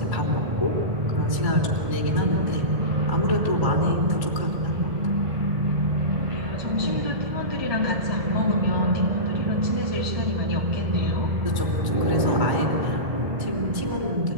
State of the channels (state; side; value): late; left; 1.7 ms